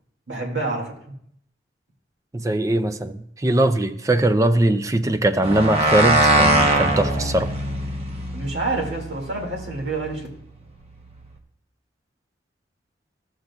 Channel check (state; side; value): normal; both; correlation 0.45